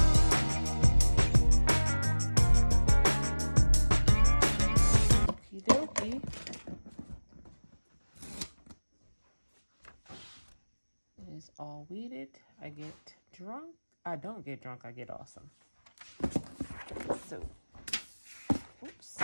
It is all weeded. I get drunk. I don't get drunk, I get awesome. So, oops.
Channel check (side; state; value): both; inverted; correlation -1.00